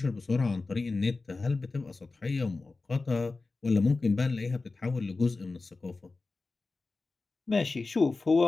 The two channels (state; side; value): quieter; right; 3.7 dB